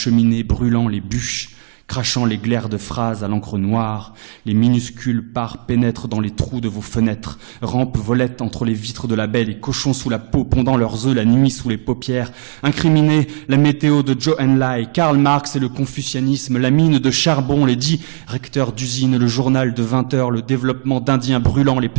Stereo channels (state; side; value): silent; left; 69 dB below the other